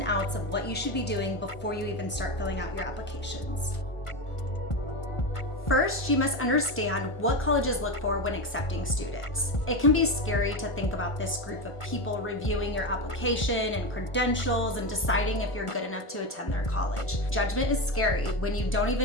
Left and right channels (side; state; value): right; late; 1.5 ms